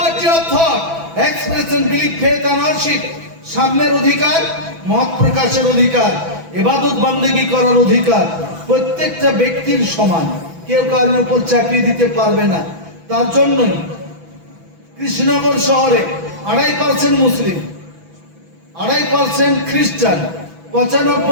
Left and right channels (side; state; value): left; late; 6.0 ms